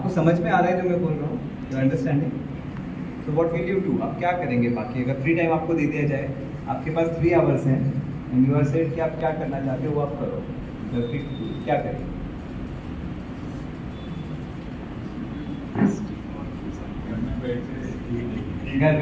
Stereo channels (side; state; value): both; identical; correlation 1.00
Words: समझ में आ रहा है जो मैं बोल रहा हूँ? You understanding? तो व्हाट विल यू डू? आप क्या करेंगे? बाकी अगर फ्री टाइम आपको दे दिया जाए, आपके पास 3 आवर्स हैं एंड यू आर सेड कि आप क्या करना चाहते हो वो आप करो, तो फिर क्या करेंगे? घर